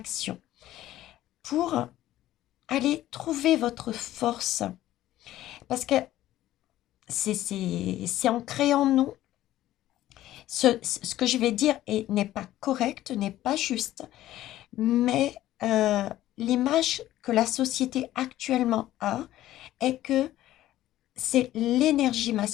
pour aller trouver votre force. Parce que c'est ancré en nous. Ce que je vais dire n'est pas correct, n'est pas juste, mais l'image que la société actuellement a est que c'est l'énergie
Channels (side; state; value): right; quieter; 14.2 dB